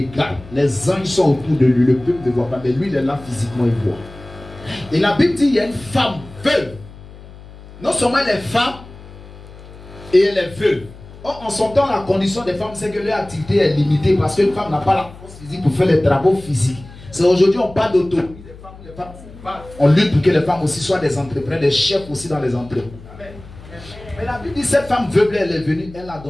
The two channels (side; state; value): left; noise; hum, 18 dB below the sound